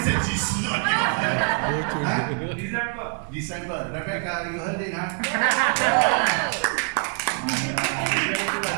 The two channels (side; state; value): left; quieter; 38.7 dB